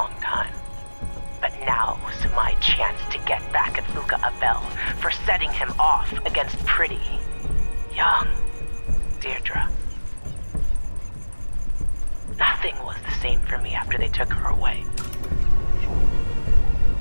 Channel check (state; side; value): inverted; both; correlation -1.00